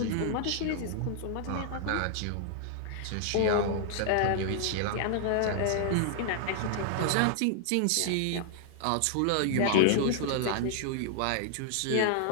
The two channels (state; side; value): different; both; correlation -0.01